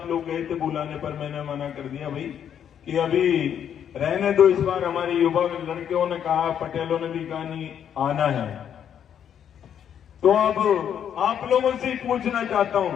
लोग गए थे बुलाने पर, मैंने मना कर दिया भाई कि अभी रहने दो। इस बार हमारे युवा लड़कियों ने कहा, पटेलों ने भी कहा नहीं आना है। तो अब आप लोगों से पूछना चाहता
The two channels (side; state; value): right; quieter; 9.0 dB